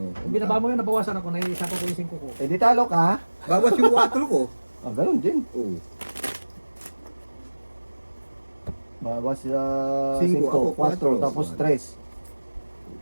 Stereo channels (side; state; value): both; inverted; correlation -1.00